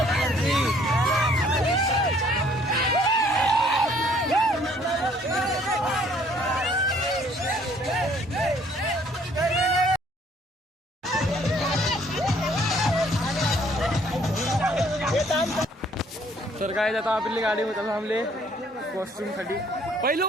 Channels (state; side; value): normal; both; correlation 0.61